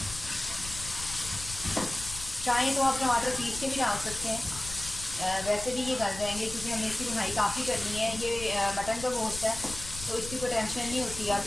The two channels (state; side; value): noise; left; rumble, 12 dB below the sound